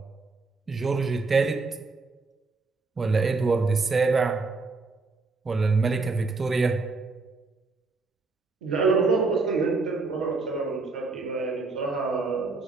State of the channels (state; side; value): quieter; left; 3.9 dB